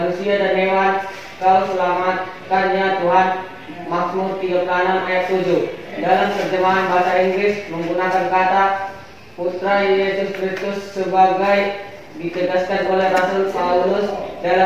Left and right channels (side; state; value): both; identical; correlation 1.00